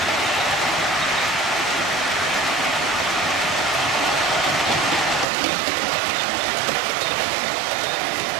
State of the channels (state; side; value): drops out; left; at 5.2 s